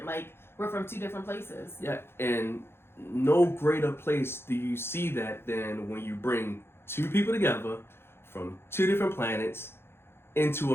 Like we're from two different places. Yeah, and no greater place do you see that than when you bring two people together from two different planets into a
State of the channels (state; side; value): late; right; 0.11 ms